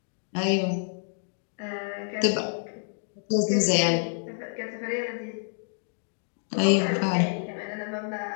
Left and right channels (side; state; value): right; silent; digital silence